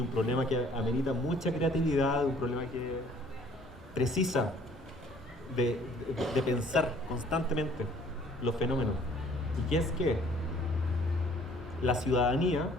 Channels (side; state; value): both; normal; correlation 0.57